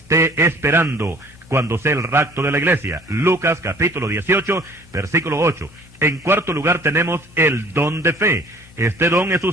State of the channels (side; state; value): both; normal; correlation 0.53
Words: esperando cuando sea el rapto de la iglesia. Lucas capítulo 18, versículo 8. En cuarto lugar tenemos el don de fe. Este don es